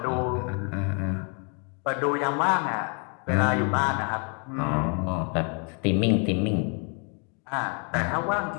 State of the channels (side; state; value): right; quieter; 38.2 dB